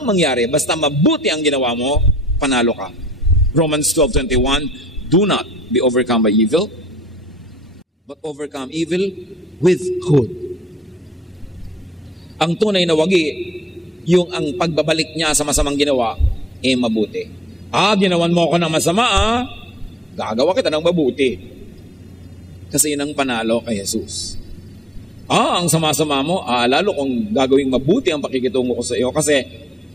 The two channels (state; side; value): normal; both; correlation 0.67